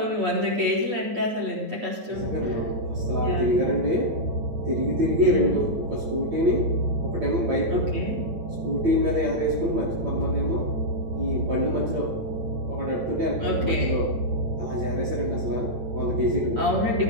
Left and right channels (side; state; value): left; late; 8.4 ms